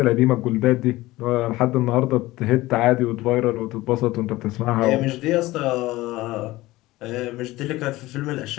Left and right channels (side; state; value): right; quieter; 18.4 dB